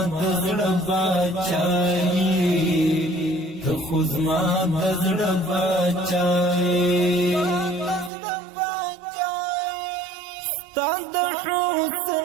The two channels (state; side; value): drops out; left; at 8.1 s